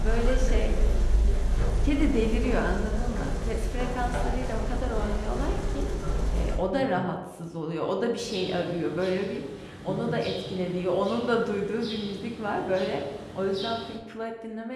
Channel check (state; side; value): identical; both; correlation 1.00